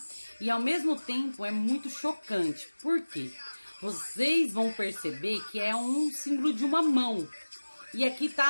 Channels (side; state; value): both; inverted; correlation -1.00